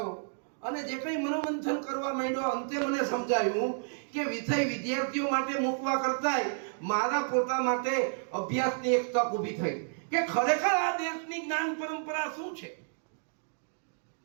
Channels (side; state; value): left; silent; digital silence